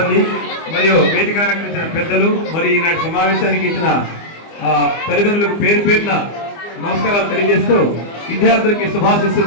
మరియు వేదిక అలంకరించిన పెద్దలు, మరి ఈనాటి సమావేశానికి ఇచ్చిన తల్లిదండ్రులకు పేరు పేరున నమస్కారాలు తెలియజేస్తూ విద్యార్థులకి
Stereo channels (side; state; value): right; late; 24 ms